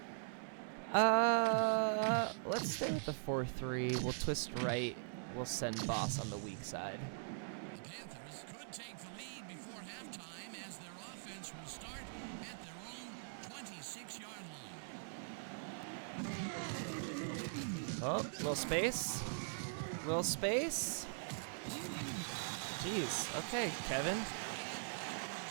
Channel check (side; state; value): left; silent; digital silence